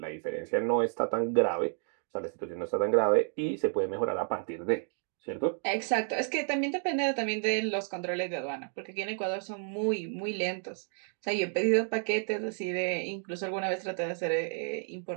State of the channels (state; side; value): silent; left; 57 dB below the other